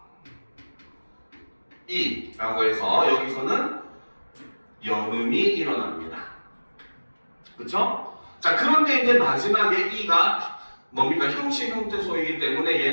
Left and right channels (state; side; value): inverted; both; correlation -1.00